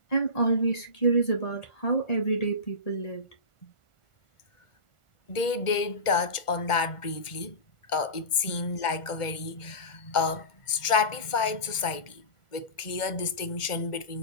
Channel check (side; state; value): right; late; 1.4 ms